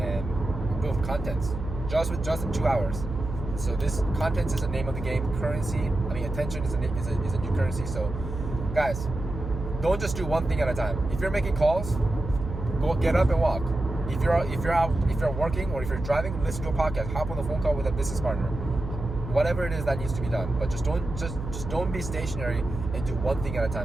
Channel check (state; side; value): noise; right; hum, 7 dB below the sound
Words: build content just in 2 hours. So this content is the name of the game. Attention is a new currency. So guys, don't just do one thing at a time. If you're making calls, go get up and walk. If you're working or if you're driving, listen to a podcast, hop on the phone call with a business partner. Whatever it is that needs to be done, but just don't be stationary and do one thing at a